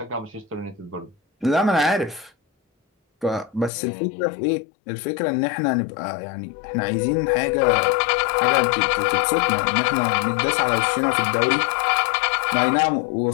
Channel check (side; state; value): right; drops out; at 3.7 s